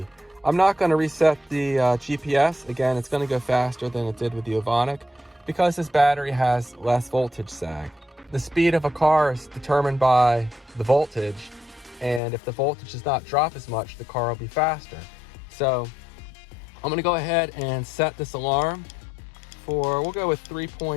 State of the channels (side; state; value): right; drops out; at 12.2 s